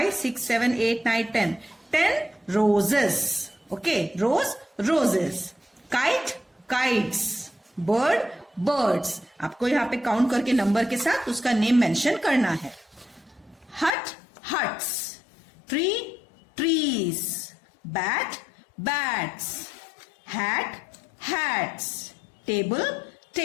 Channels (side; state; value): right; drops out; at 13.9 s